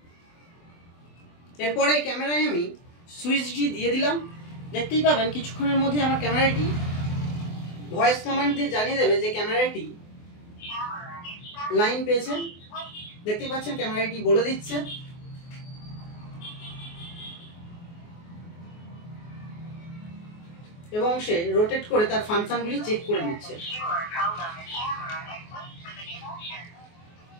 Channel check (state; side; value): late; right; 24 ms